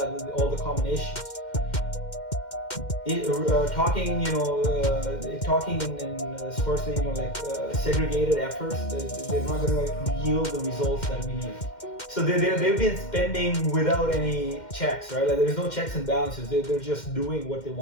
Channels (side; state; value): right; late; 2.1 ms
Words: all the common issues. Talking in firstly, segregated efforts, they're not going to yield the results that we need. So they've been spending without any checks, right? Like there's no checks and balances. They're just doing what they